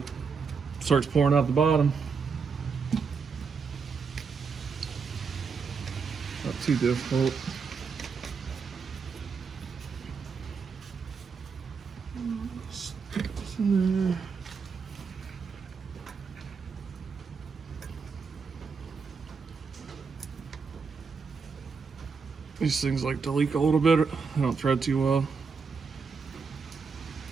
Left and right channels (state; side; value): quieter; left; 5.4 dB